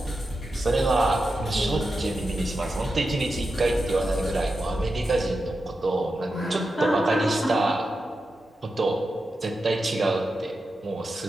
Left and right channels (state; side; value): normal; both; correlation 0.89